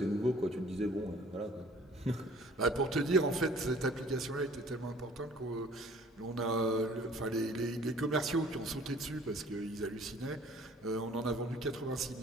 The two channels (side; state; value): both; normal; correlation 0.52